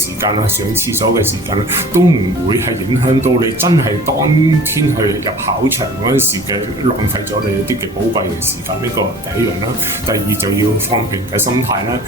間啊，上廁所嘅時間啊，都唔會係影響到你真係當天去入考場嗰陣時嘅浪費咗你一啲嘅寶貴嘅時間。呢個第一樣啦。第二就要放平嘅心態啦，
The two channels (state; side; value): normal; both; correlation 0.44